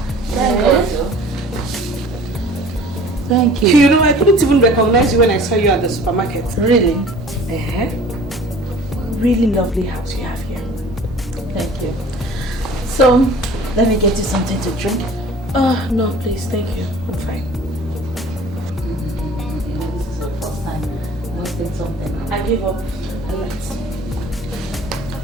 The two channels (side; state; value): both; normal; correlation 0.46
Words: God. Thank you. You know, I couldn't even recognize you when I saw you at the supermarket. Really? Really lovely house you have here. Thank you. So, let me get you something to drink. No, please, thank you. I'm fine. This is the first time I wanted something. I gave up. I left.